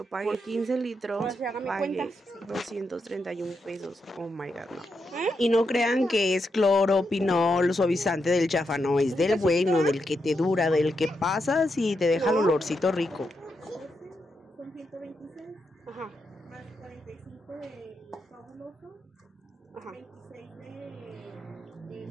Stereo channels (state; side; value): normal; both; correlation 0.83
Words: pagué 15 litros, pagué 231 pesos, oh my god, no. Y no crean que es cloro, pinol, suavizante del chafa, no, es del bueno, del que te dura, del que pasas y te deja el olorcito rico. Son 126. Ajá. Más 45 de fabuloso. Ajá. 26 de